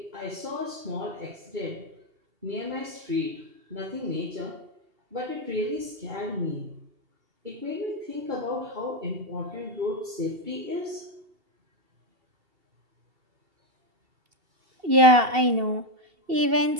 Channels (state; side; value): late; left; 2.7 ms